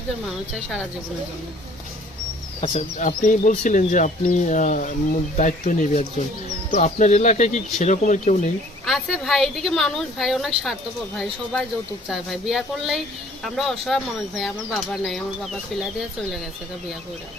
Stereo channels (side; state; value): both; normal; correlation 0.55